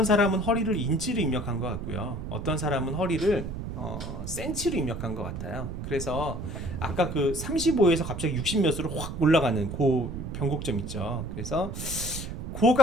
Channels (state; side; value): noise; right; rumble, 7 dB below the sound